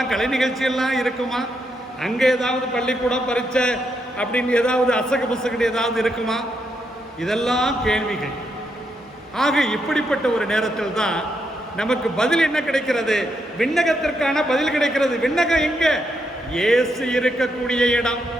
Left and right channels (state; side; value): normal; both; correlation 0.80